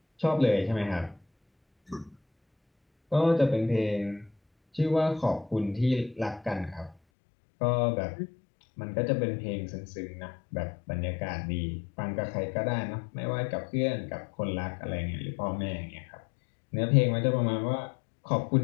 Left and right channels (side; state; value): right; drops out; at 7.0 s